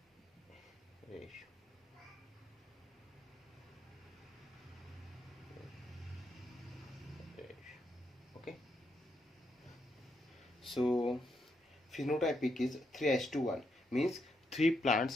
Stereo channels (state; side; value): normal; both; correlation 0.79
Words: ratio. Okay, so phenotypic is 3:1, means 3